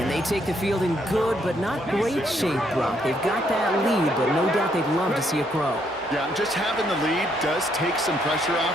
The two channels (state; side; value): normal; both; correlation 0.72